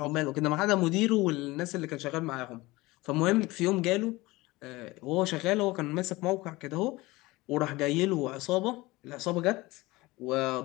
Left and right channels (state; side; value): quieter; right; 20.8 dB